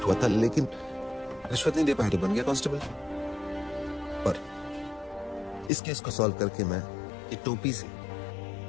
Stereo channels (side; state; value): right; drops out; at 5.7 s